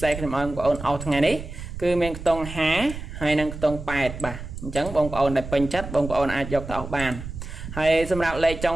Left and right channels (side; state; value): right; noise; rumble, 9 dB below the sound